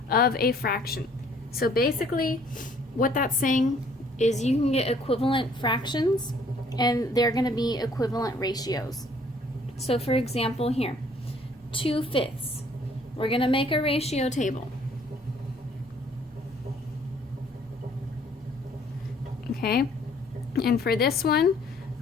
of a fraction. So basically, what that's saying is you can get equivalent fractions and they're going to be equivalent ratios. So for example here, 2/5. We're going to make a ratio table. Okay, and for this one,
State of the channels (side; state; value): both; normal; correlation 0.60